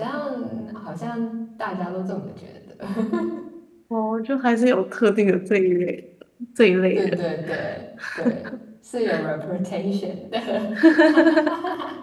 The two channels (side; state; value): both; identical; correlation 1.00